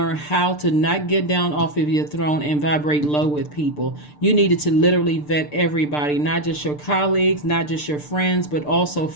how to not get down off of your throne and vibrate low with people. You needed to literally vet everybody, not just your colleagues, not just your friends, but also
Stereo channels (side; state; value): right; late; 6.7 ms